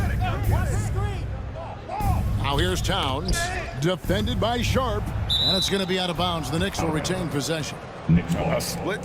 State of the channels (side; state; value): both; identical; correlation 1.00